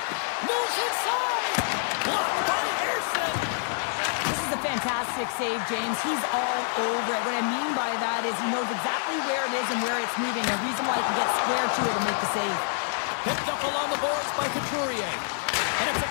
Moves inside. Blocked by Anderson. This is a fantastic save, James. He's all over it. What I mean by that is he knows exactly where it is and where it's moving. A reason why he can get square to it and make the save. Picked up along the boards by Couturier. And it's a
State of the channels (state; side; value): silent; right; 60 dB below the other